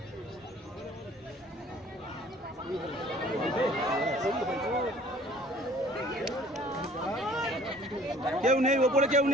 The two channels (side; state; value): both; normal; correlation 0.53